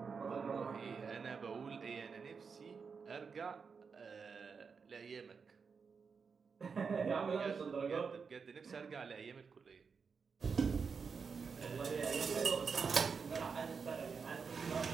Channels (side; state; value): left; quieter; 5.6 dB